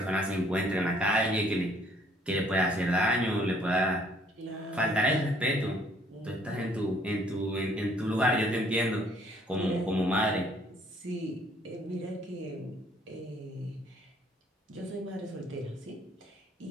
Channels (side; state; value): both; normal; correlation 0.62